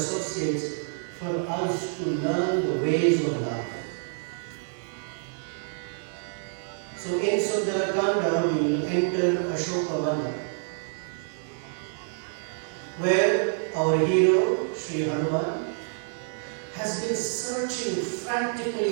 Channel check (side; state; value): left; silent; digital silence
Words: for us to learn the ways of love. So in Sundarakanda we will enter Ashokavana, where our hero, Sri Hanuman, has been searching